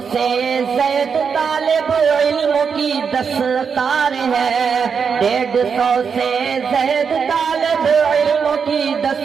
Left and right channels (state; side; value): quieter; left; 6.2 dB